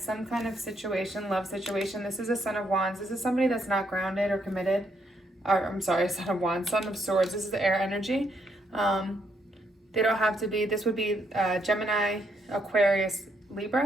kind of situation, love situation. This is a Son of Wands. This is somebody that's not grounded or committed. Or, I'm sorry, Son of Wands, Son of Swords. This is the air energy. They don't have to be, this would be Gemini, Aquarius,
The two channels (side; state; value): both; normal; correlation 0.75